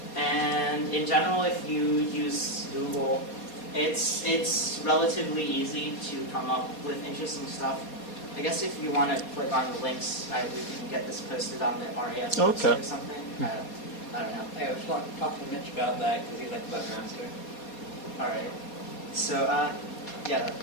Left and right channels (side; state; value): right; late; 4.2 ms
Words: And in general, if you use Google, it's relatively easy to come up with interesting stuff. I guess if you want to click on the links, we can get this posted on the RAS website or something. I don't know. Hey, I was talking to Mitch about that because he's like the webmaster. All right. So, yeah,